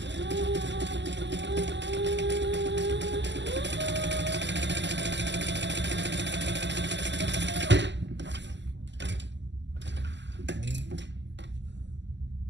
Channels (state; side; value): late; left; 0.52 ms